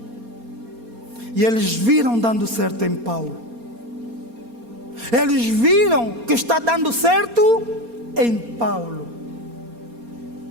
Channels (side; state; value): left; late; 4.3 ms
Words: E eles viram dando certo em Paulo. Eles viram que está dando certo em Paulo.